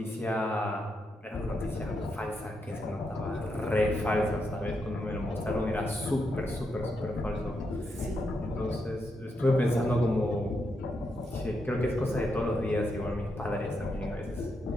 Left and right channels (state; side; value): normal; both; correlation 0.82